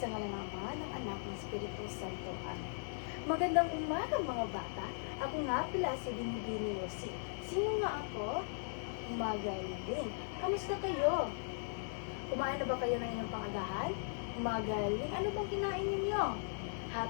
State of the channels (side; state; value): right; silent; 52 dB below the other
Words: ngalan ng Ama, ng Anak, ng Espiritu Santo. Amen. Magandang umaga mga bata. Ako nga pala si Binibini Rosie. Sino nga ako? Magaling. Kamusta kayo? Kumain na ba kayo ng inyong pangagahan? Magaling. Ano bang kinain ninyo?